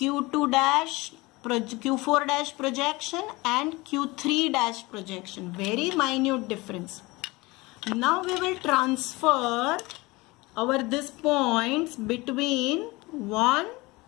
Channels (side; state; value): right; quieter; 22.7 dB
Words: dash, Q4 dash projection and Q3 dash projection. Very minute difference. Now we will transfer these points between 1